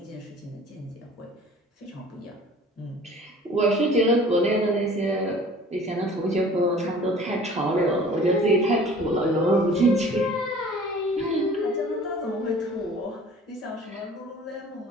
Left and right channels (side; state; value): both; normal; correlation 0.47